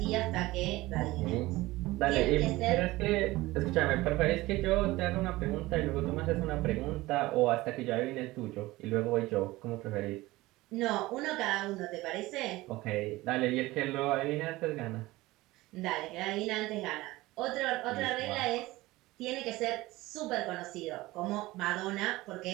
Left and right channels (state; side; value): quieter; left; 19.1 dB